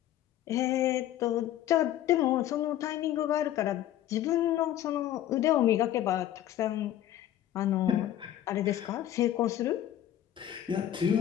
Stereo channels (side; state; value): right; quieter; 12.2 dB